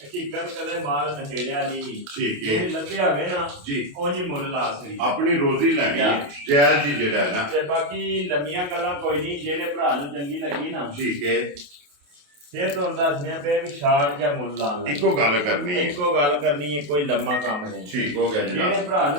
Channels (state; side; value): late; left; 28 ms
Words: ਕਦੇ ਮਾਲ ਨਸ਼ੇੜਿਆ ਨਹੀਂ ਠੀਕ ਹੈ ਜੇ ਲੱਭਿਆ ਹੋਵੇ ਨਾ ਜੀ ਉਹ ਜੀ ਮੁੱਲ ਲਾ ਸਕਦੀ ਆਪਣੀ ਰੋਜ਼ੀ ਲੈਣੀ ਹੈ ਜਾਇਜ਼ ਜੀ ਜਿਹੜਾ ਹੈ ਨਾ ਤੇ ਬਾਕੀ ਲੰਮੀਆਂ ਗੱਲਾਂ ਕੋਈ ਨਹੀਂ ਜਿਹੜੇ ਭਰਾ ਨੂੰ ਚੰਗੀ ਲੱਗੀ ਨਾ ਠੀਕ ਹੈ ਫਿਰ ਤੁਹਾਨੂੰ ਦੱਸਦੇ ਪਏ ਵੀ ਸ਼ਾਰਟ ਜਾਂ ਮੁੱਲ ਲਾਉਣ ਲੱਗੇ ਇੱਕੋ ਗੱਲ ਕਰਨੀ ਹੈ ਇੱਕੋ ਗੱਲ ਕਰਨੀ ਹੈ ਕੋਈ ਲੰਮਾ ਕੰਮ ਨਹੀਂ ਠੀਕ ਹੋ ਗਿਆ ਜਿਹੜੇ ਜਨਾਬ ਭਰਾ